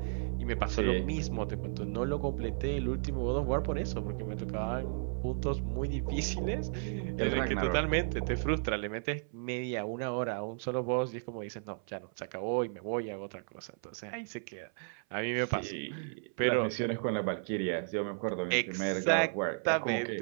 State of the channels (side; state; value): left; silent; 55 dB below the other